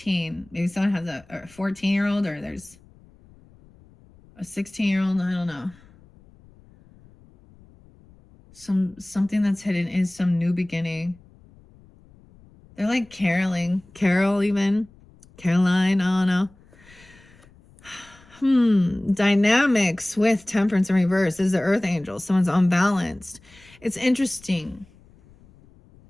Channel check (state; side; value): noise; left; rumble, 27 dB below the sound